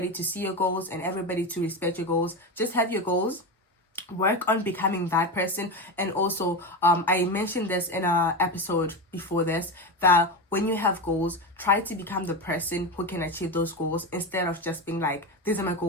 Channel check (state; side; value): normal; both; correlation 0.19